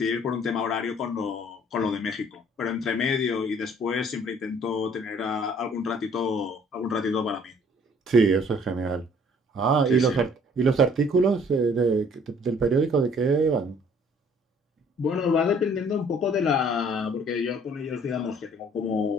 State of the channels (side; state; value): both; normal; correlation 0.58